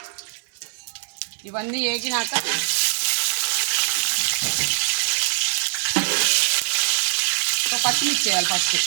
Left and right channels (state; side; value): silent; left; digital silence